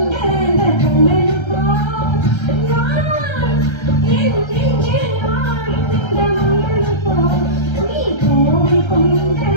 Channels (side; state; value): right; late; 1.3 ms